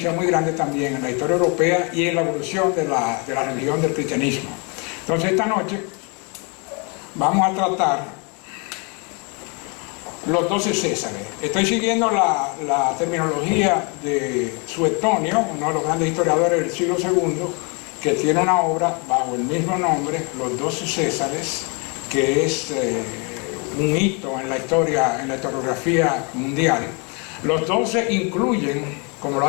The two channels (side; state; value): right; quieter; 32.6 dB